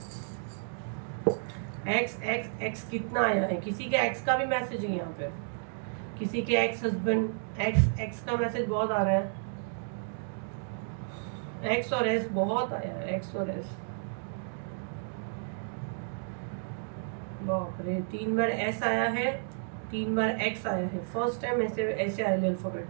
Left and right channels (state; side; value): silent; left; digital silence